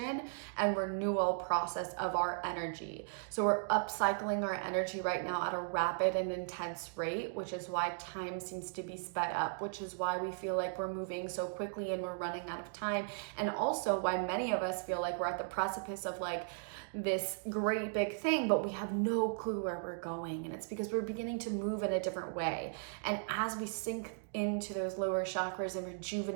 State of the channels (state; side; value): silent; left; digital silence